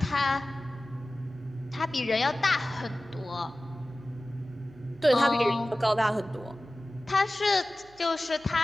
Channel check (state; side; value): noise; right; hum, 26 dB below the sound